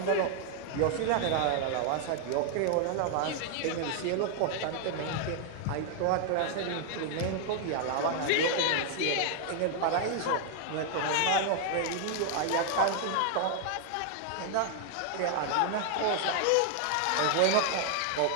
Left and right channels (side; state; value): both; different; correlation 0.00